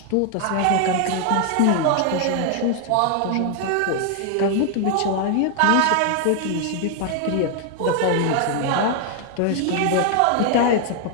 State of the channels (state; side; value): different; both; correlation 0.00